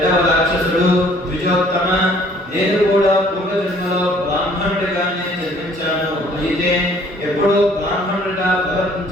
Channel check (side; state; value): both; normal; correlation 0.58